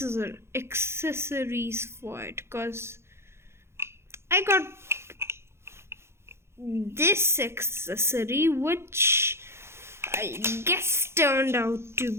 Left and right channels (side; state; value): left; late; 0.12 ms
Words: for it, because I got this accessory which I guess turned out to